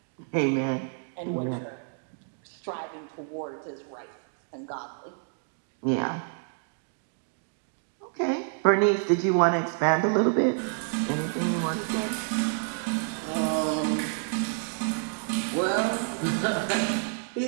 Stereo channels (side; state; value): left; silent; 59 dB below the other